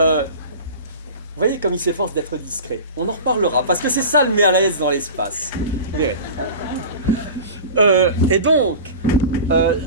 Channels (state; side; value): inverted; both; correlation -0.34